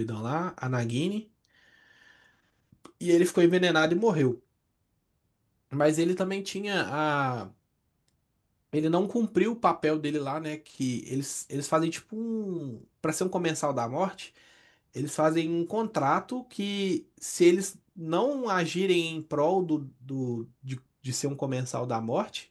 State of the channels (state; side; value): identical; both; correlation 1.00